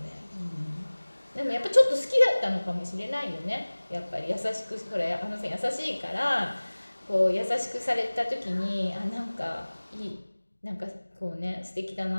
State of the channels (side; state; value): both; inverted; correlation -1.00